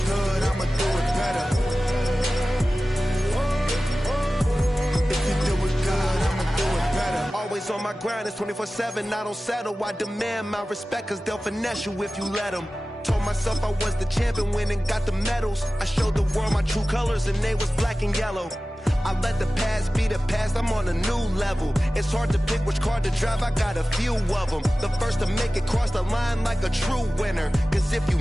On my grind, it's 24/7, I don't settle. I demand my respect, cause they'll finesse you if you let them. Told myself I was the champion, went and got the medals. I showed the world my true colors, and they was black and yellow. I let the past be the past, I'm on a new level. It's hard to pick which car to drive, I got a few of them. The first to make it cross the line like a true winner. Cause if you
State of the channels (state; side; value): normal; both; correlation 0.96